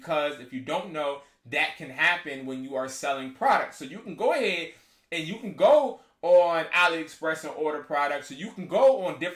if you don't know, that can happen when you are selling products. So you can go ahead and you can go on AliExpress and order products. So you can go on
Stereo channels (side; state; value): both; identical; correlation 1.00